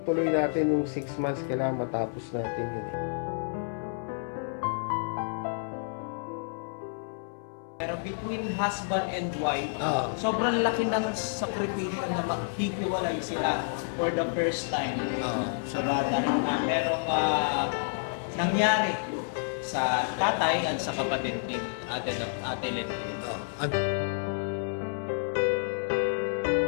natin yung 6 months. Kailangan matapos natin yun. Pero between husband and wife, sobrang laki ng sakripisyo na maghihiwalay sila for the first time. Sa bata na merong nangyari sa tatay at sa kapatid ni Ate Lenny.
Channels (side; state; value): right; silent; 58 dB below the other